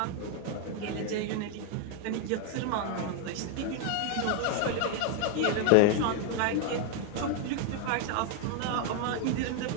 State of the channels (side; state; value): both; different; correlation 0.00